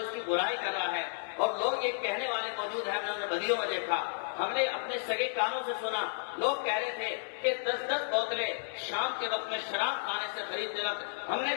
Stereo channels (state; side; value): silent; right; digital silence